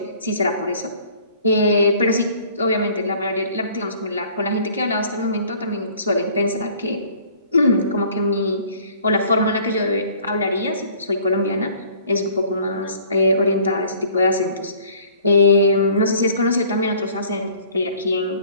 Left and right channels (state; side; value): inverted; both; correlation -0.53